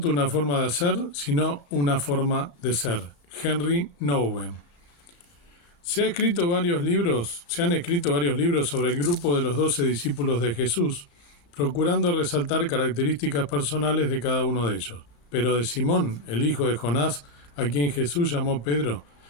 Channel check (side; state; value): right; late; 35 ms